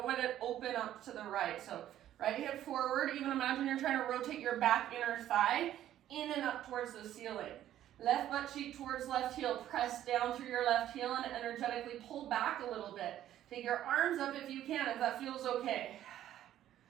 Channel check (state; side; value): quieter; left; 12.2 dB